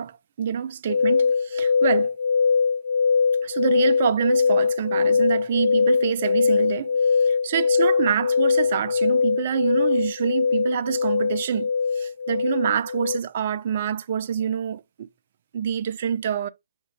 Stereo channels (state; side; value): inverted; both; correlation -0.79